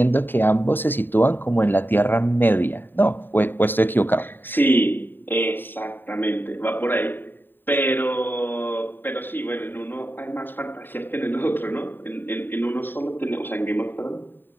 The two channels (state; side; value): late; right; 0.094 ms